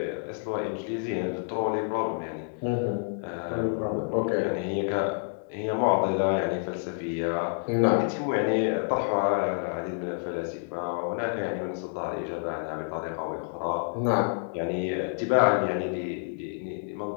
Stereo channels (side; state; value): right; silent; digital silence